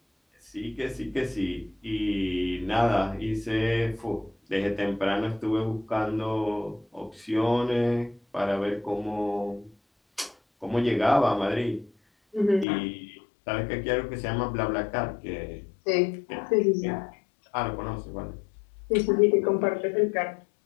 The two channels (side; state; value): right; drops out; at 12.7 s